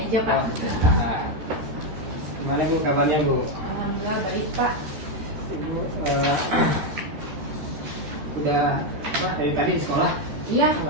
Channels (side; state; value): left; late; 13 ms